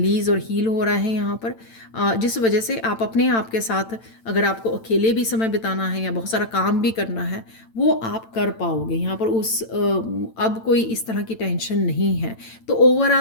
और हील हो रहा है यहाँ पर, जिस वजह से आप अपने आप के साथ, अगर आपको अकेले भी समय बिताना है या बहुत सारा काम भी करना है, वो आप कर पाओगे यहाँ पर। अब कोई इस तरह की टेंशन नहीं है। तो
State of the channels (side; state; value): right; late; 8.9 ms